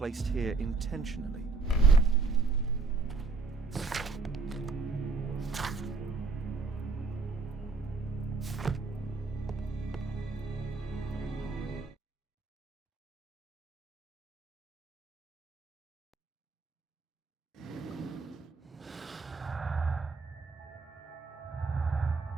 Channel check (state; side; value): quieter; left; 4.2 dB